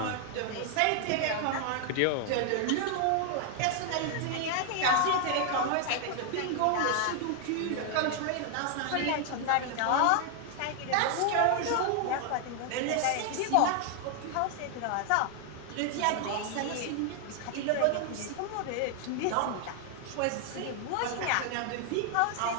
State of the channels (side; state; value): both; different; correlation 0.00